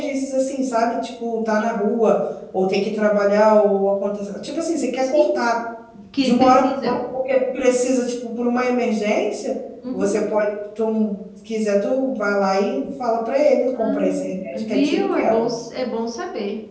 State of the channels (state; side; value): identical; both; correlation 1.00